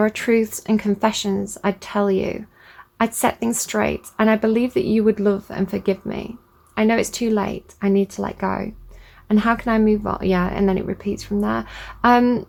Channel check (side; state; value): both; identical; correlation 1.00